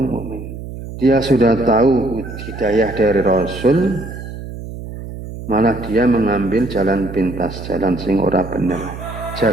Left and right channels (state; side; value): noise; right; hum, 10 dB below the sound